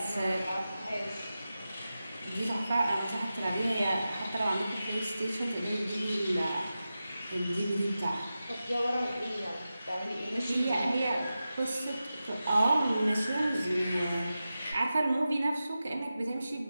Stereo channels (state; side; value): inverted; both; correlation -0.93